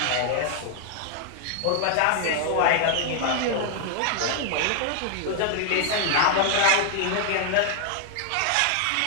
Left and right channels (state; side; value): different; both; correlation 0.00